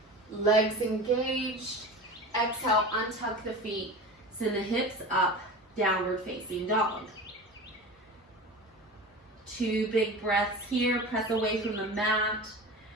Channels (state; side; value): normal; both; correlation 0.33